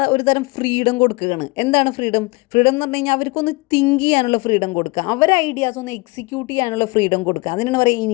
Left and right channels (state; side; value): quieter; right; 25.4 dB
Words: ഒരു തരം ഫ്രീഡം കൊടുക്കുകയാണ്. എന്താണ് ഫ്രീഡം? ഫ്രീഡം എന്ന് പറഞ്ഞു കഴിഞ്ഞാൽ അവർക്കൊന്ന് തിങ്ക് ചെയ്യാനുള്ള ഫ്രീഡം കൊടുക്കുക, അവരെ ഐഡിയാസ് ഒന്ന് എക്സിക്യൂട്ട് ചെയ്യാനുള്ള ഫ്രീഡം കൊടുക്കുക. അതിനാണ് പറയുക